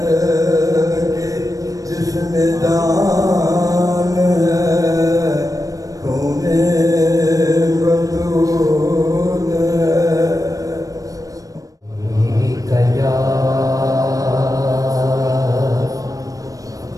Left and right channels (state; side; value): late; left; 0.17 ms